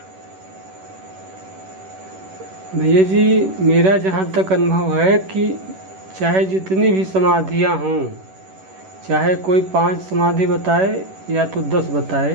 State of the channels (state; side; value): late; left; 11 ms